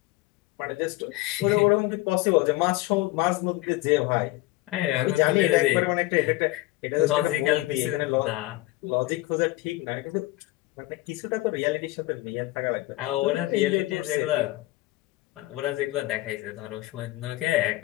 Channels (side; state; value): right; quieter; 19.0 dB